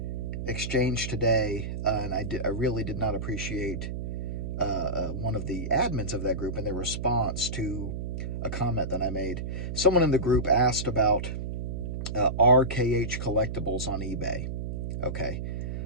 exchange today, and I really did not appreciate one of the admins of that group and their response to a comment that I made. Someone in the group asked about RKH Collectibles on eBay. Okay.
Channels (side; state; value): right; noise; hum, 4 dB below the sound